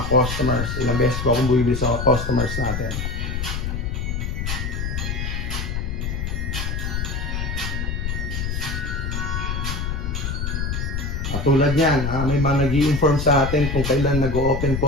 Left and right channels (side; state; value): left; noise; rumble, 2 dB below the sound